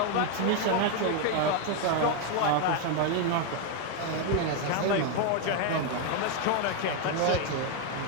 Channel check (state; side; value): different; both; correlation 0.01